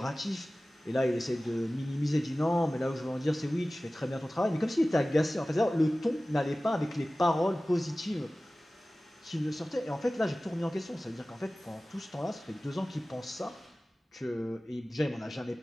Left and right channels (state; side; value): normal; both; correlation 0.97